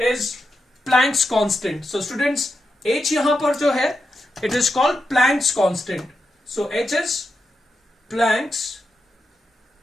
Planck's constant. So students, h यहाँ पर जो है, it is called Planck's constant. So h is Planck's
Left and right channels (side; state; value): both; normal; correlation 0.87